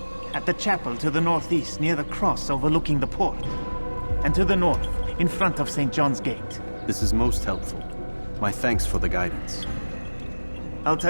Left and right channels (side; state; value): both; inverted; correlation -1.00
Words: At the chapel to the northeast, near the cross overlooking the port. And to the north, in front of St. John's Gate. This is most helpful. My thanks for the guidance.